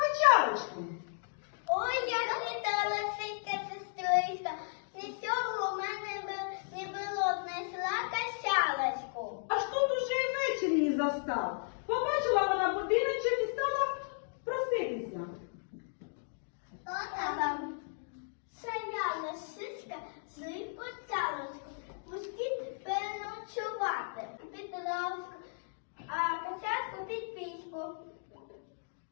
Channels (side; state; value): right; silent; digital silence